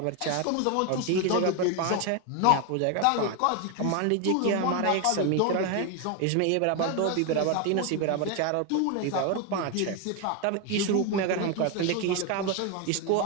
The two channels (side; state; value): both; different; correlation 0.01